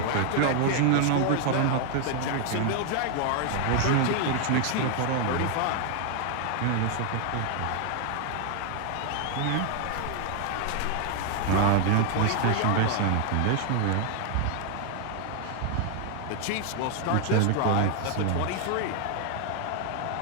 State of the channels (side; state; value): both; different; correlation 0.00